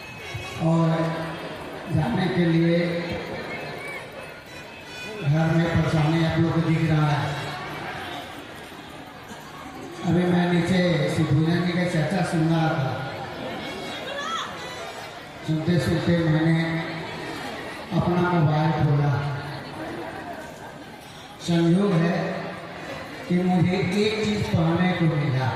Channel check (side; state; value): both; identical; correlation 1.00